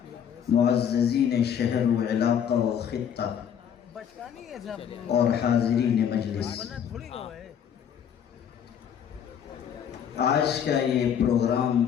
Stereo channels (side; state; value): right; quieter; 8.5 dB